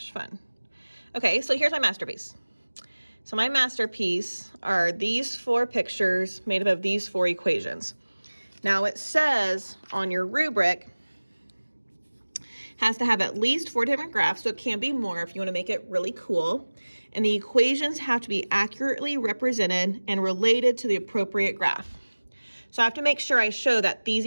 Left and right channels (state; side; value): inverted; both; correlation -1.00